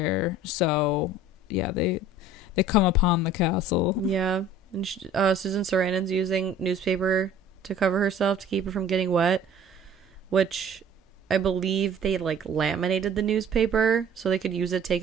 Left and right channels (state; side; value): normal; both; correlation 0.48